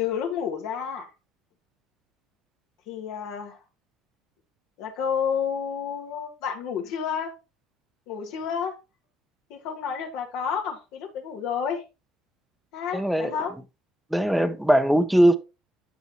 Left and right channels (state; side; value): normal; both; correlation 0.77